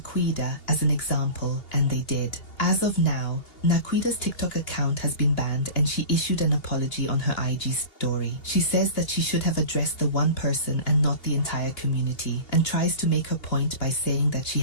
as an example, and they did. As of now, Naquueda's TikTok account has been banned and she issued an apology on her IG story. She says that she should have addressed the one person and not the entire community, and tries to make her point by saying that she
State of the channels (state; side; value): late; right; 2.8 ms